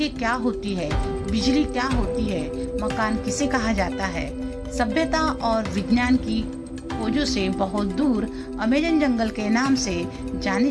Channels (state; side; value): identical; both; correlation 1.00